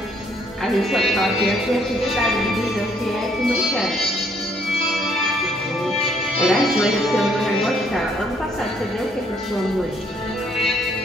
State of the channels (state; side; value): normal; both; correlation 0.67